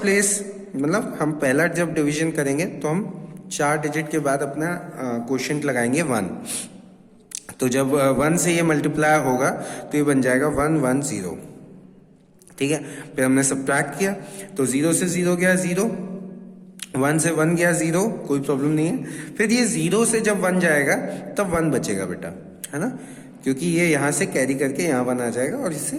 प्लेस मतलब हम पहला जब डिवीजन करेंगे तो हम 4 डिजिट के बाद अपना क्वोशिएंट लगाएंगे 1. तो जब 1 से ये मल्टीप्लाई होगा तो ये बन जाएगा 1 1 0. ठीक है, फिर हमने सब्ट्रैक्ट किया तो 0 से 0 गया 0, 1 से 1 गया 0, कोई प्रॉब्लम नहीं है. फिर ये 0 से जब 1 जाएगा तब 1 बचेगा बेटा, है ना, क्योंकि ये यहाँ से कैरी करके यहाँ 1 आ जाएगा और इससे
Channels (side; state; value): both; identical; correlation 1.00